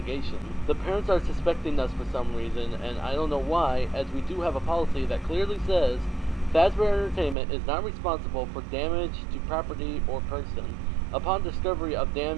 The parents are suspecting us for some reason, and I don't know why, as we do have a policy that clearly says Fazbear Entertainment is not responsible for damage to property or person. Upon discovery of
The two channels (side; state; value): left; drops out; at 7.4 s